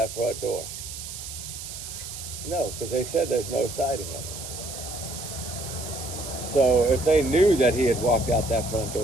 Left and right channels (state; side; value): noise; right; hiss, 9 dB below the sound